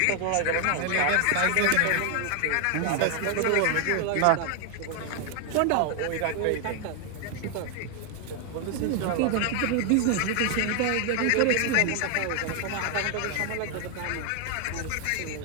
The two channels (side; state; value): both; different; correlation 0.00